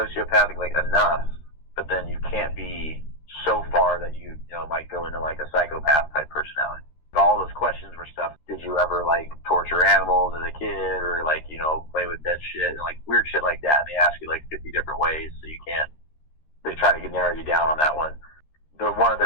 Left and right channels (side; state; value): right; late; 13 ms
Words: like enough, but then you can't be so far that you might go into like a psychopath type personality. All those questions were stuff. Did you ever like torture animals as a kid, or like, play with dead shit and like weird shit like that? And they ask you like 50 different ways, so you can't. They try to narrow you down on that one.